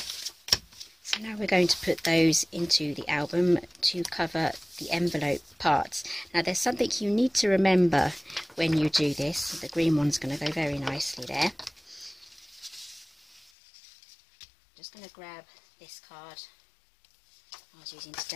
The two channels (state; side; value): drops out; right; at 13.5 s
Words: So now we're going to put those into the album to cover the envelope parts. Now there's something you need to remember when you do this. The green one's going to go very nicely there. Just going to grab this card I was using to